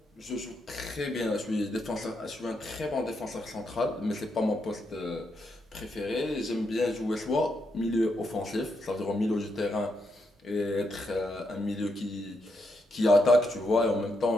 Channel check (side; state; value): both; normal; correlation 0.80